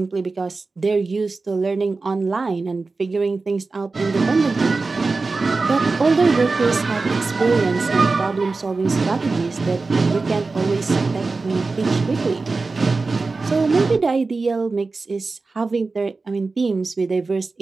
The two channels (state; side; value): quieter; left; 3.9 dB